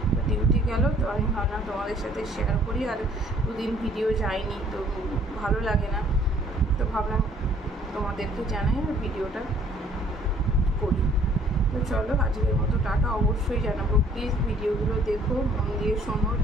তো ডিউটি গেল। তো আমি ভাবলাম তোমাদের সাথে শেয়ার করি, আর 2 দিন ভিডিও যায়নি তো ভালো লাগে না, তো ভাবলাম তোমাদেরকে জানাই আর ভিডিওটা করি। তো চলো আজকের মতো টাটা। অবশ্যই জানাবো, প্লিজ ভিডিওগুলো দেখো, মন দিয়ে শোনো,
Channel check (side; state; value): both; normal; correlation 0.59